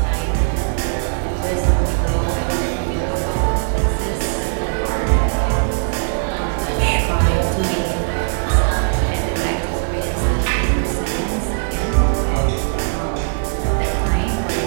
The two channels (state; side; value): silent; left; 66 dB below the other